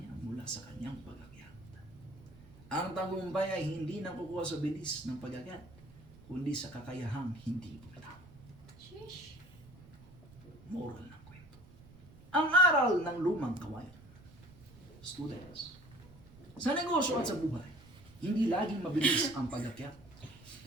mula sa kanyang pag-akyat. Ang tagumpay ay hindi nakukuha sa bilis ng pag-akyat, kundi sa kakayahang hindi bumitaw. Sheesh. Moral ng kwento. Ang aral ng lumang kawayan. Students, sa negosyo at sa buhay, hindi laging mabilis ang pag-akyat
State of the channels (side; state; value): right; noise; rumble, 21 dB below the sound